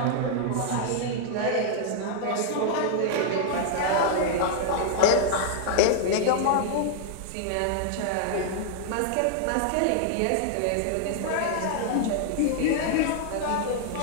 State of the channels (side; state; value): both; different; correlation -0.01